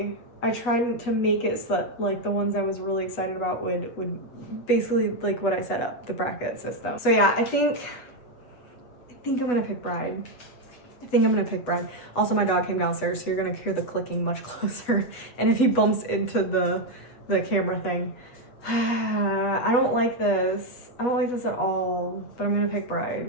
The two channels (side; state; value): right; late; 8.1 ms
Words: I tried to make it so that like the ones I was really excited about would basically like what I set up, the bracket system. So yeah, I think I'm gonna pick Bride. Also, my dog came downstairs, so you're gonna hear the clicking much closer. And if he bumps into the camera thing, I don't like this. I don't like this at all, but I'm gonna pick